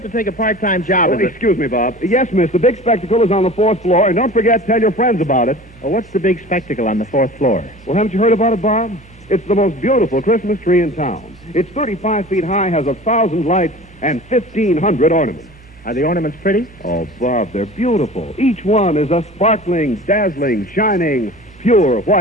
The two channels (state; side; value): normal; both; correlation 0.40